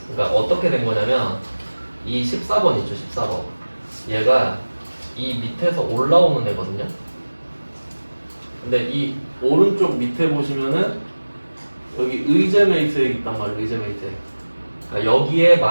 그러니까 어떻게 된 거냐면 이 14번 있죠, 14번. 얘가 이 밑에서 올라오는 애거든요. 근데 이 오른쪽 밑에 보시면은 여기 의제 매입세액 있단 말이에요. 의제 매입세액. 그러니까 여기에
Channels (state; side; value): inverted; both; correlation -1.00